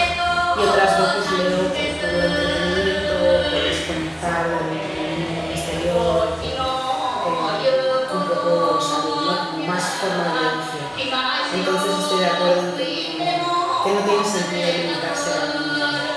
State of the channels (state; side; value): identical; both; correlation 1.00